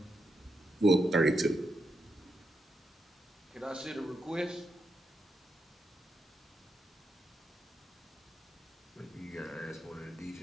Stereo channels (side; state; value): both; normal; correlation 0.83